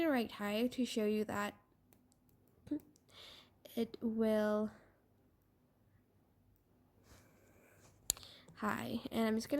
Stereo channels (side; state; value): both; identical; correlation 1.00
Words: write hi to show you that it will hi, and I'm just